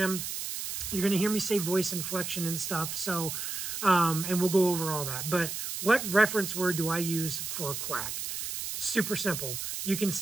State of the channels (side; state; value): right; noise; hiss, 5 dB below the sound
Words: You're going to hear me say voice inflection and stuff. So, and we'll go over all that. But what reference word do I use for Quack? Super simple. You can